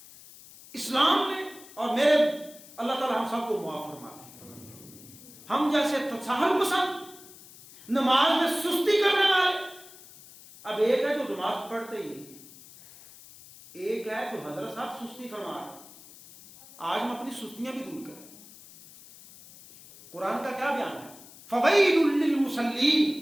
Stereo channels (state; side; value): noise; left; hiss, 20 dB below the sound